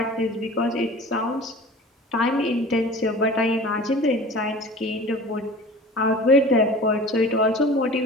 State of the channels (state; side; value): normal; both; correlation 0.40